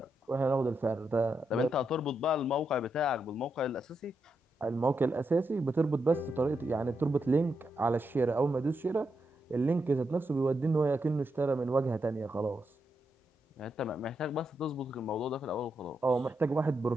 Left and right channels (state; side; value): normal; both; correlation 0.84